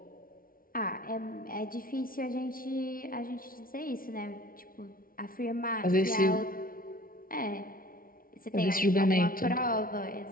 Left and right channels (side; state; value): right; late; 0.42 ms